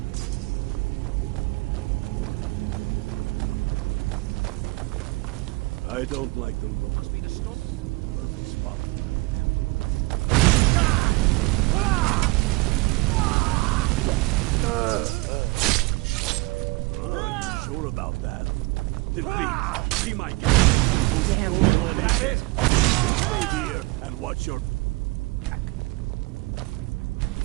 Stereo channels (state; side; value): quieter; left; 23.9 dB